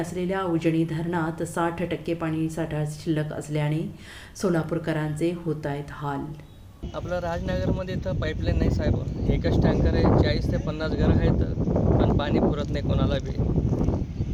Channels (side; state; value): both; identical; correlation 1.00